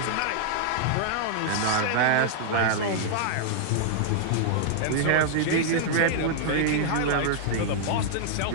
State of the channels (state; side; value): different; both; correlation -0.02